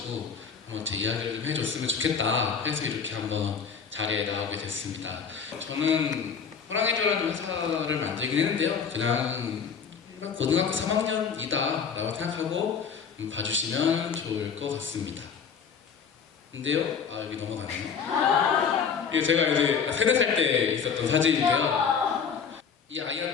한번 제 이야기를 좀 해줬으면 좋겠다 해서 이렇게 한번 자리에 나오게 됐습니다. 저는 호랑이조라는 회사를 만들긴 했는데요. 그냥 일반 고등학교 3학년이다 라고 생각하고 봐주시면 좋을 것 같습니다. 근데요, 여기 넘어가네요. 이게 제가 이제 3, 4살 때 있었던 사진인데요. 이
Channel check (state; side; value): quieter; right; 6.5 dB